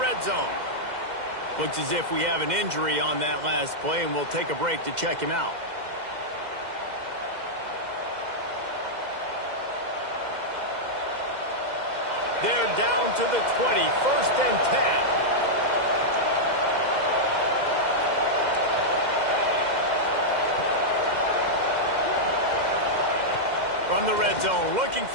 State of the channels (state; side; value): late; left; 2.0 ms